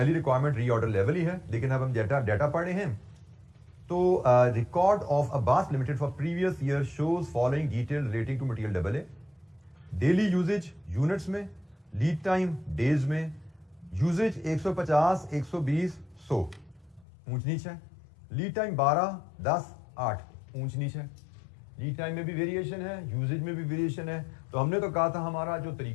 रिक्वायरमेंट रीऑर्डर लेवल ही है, लेकिन अब हम डाटा पढ़ रहे हैं। तो record of Abbas limited for previous year shows following detail relating to material double A. Daily usage units में, लीड टाइम डेज में, यूजेज 150, 120, 100 ऊंच नीच है, लीड टाइम 12, 10, 8 ऊंच नीच है। लीड टाइम में भी वेरिएशन है, यूजेज में भी वेरिएशन है। तो हमने तो कहा था हमारा जो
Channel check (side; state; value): right; drops out; at 17.1 s